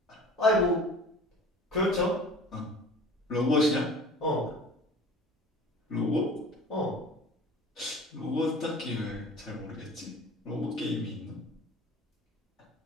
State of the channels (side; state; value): both; normal; correlation 0.43